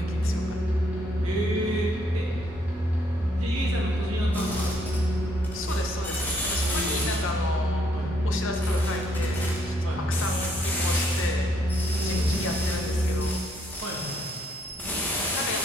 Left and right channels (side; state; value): both; normal; correlation 0.70